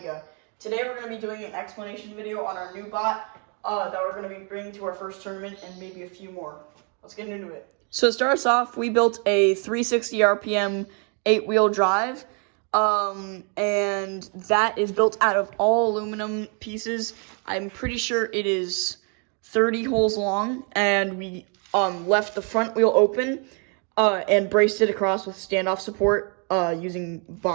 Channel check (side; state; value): left; quieter; 37.7 dB